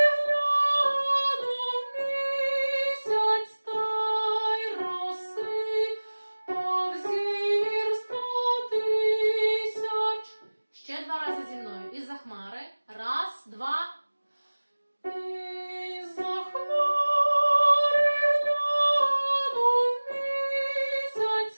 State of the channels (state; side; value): inverted; both; correlation -1.00